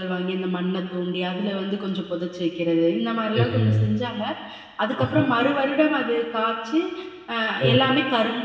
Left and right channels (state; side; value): identical; both; correlation 1.00